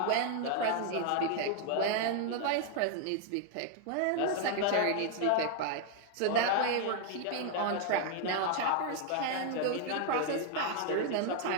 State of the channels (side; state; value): both; different; correlation 0.00